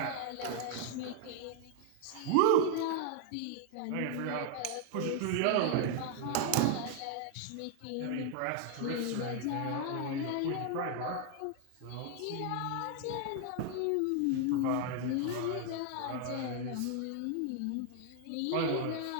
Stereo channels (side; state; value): both; different; correlation 0.00